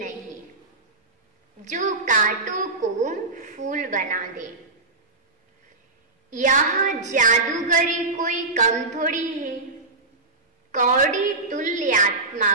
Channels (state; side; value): quieter; left; 3.3 dB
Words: नहीं जो कांटों को फूल बना दे। यहाँ जादूगरी कोई कम थोड़ी है, कौड़ी तुल्य आत्मा